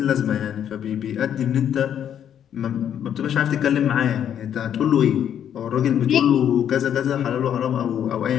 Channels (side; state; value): right; quieter; 9.4 dB